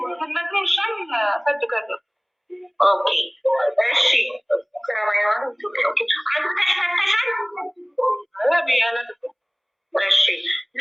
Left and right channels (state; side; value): identical; both; correlation 1.00